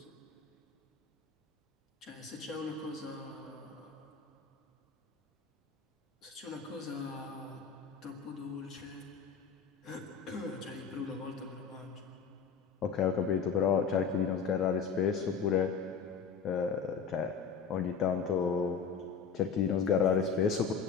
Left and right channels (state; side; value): quieter; right; 6.0 dB